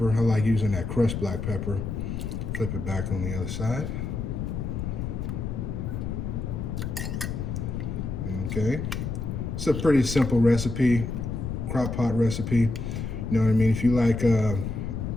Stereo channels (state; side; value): noise; left; rumble, 4 dB below the sound